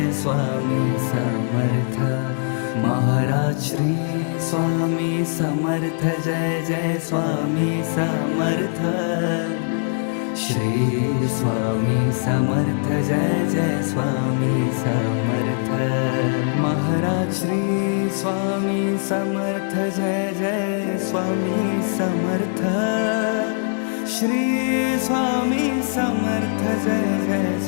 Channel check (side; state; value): right; silent; 64 dB below the other